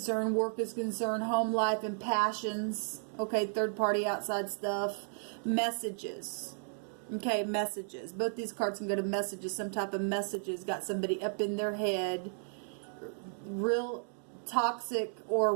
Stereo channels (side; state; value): left; silent; digital silence